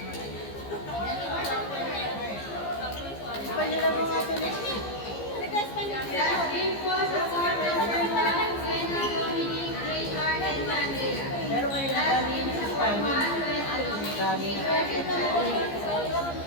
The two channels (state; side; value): late; right; 15 ms